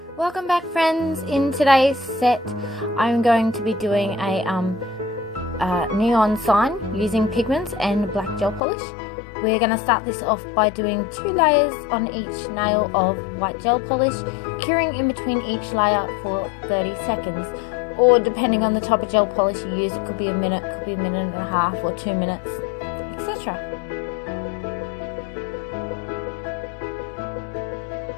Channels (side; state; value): right; drops out; at 8.6 s